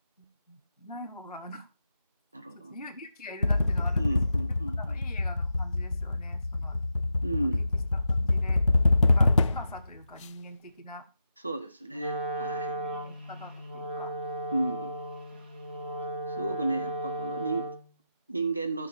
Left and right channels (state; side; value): inverted; both; correlation -0.88